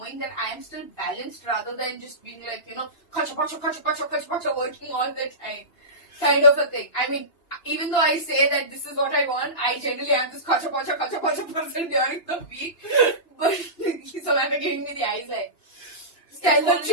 that I am still balanced rather than just being like, kacha, working all the time, kind of a thing. I mean, even though I say that this is what I want, I generally am this kacha person during the week. But Samantha giving me the eyes like,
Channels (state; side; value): late; right; 2.9 ms